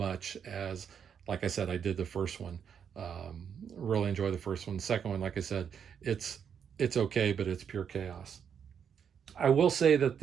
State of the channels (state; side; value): quieter; left; 7.7 dB